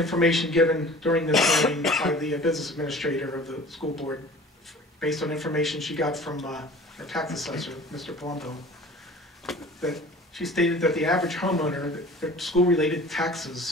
given during this hearing by the business administrator of the school board, based on information she got from our tax assessor, Mr. Palumbo, that she stated that the average homeowner, their school-related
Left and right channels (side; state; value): both; normal; correlation 0.44